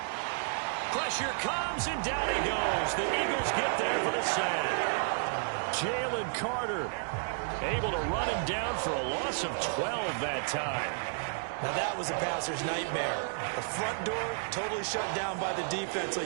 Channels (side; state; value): left; silent; digital silence